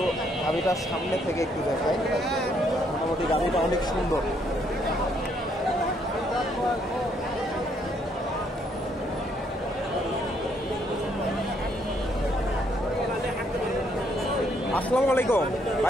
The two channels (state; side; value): normal; both; correlation 0.70